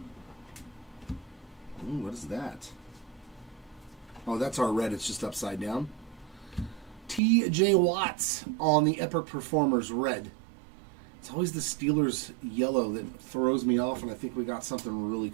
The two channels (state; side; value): drops out; left; at 7.2 s